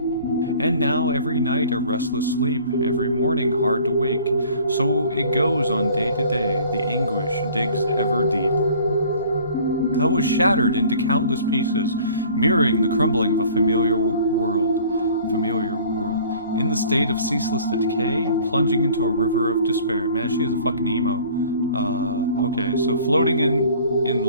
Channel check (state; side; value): inverted; both; correlation -0.51